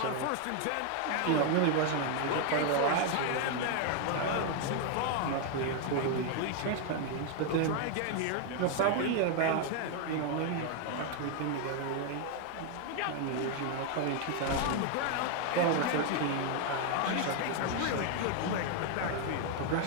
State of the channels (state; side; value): different; both; correlation 0.00